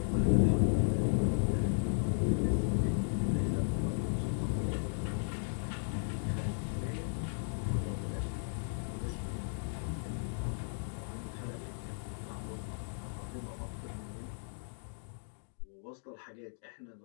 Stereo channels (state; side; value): silent; right; digital silence